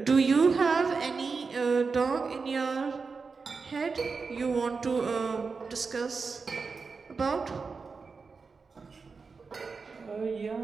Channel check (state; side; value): quieter; left; 4.8 dB